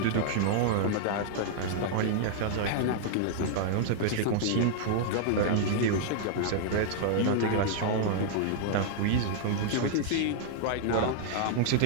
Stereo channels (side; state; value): both; different; correlation -0.01